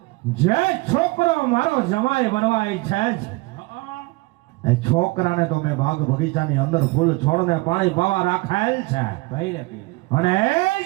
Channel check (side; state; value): left; quieter; 23.7 dB